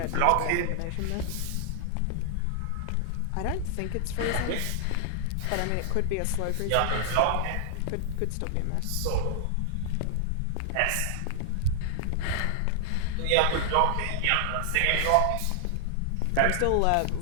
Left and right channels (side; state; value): both; different; correlation -0.01